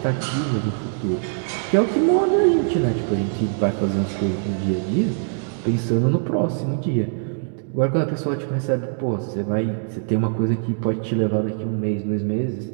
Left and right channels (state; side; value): silent; left; digital silence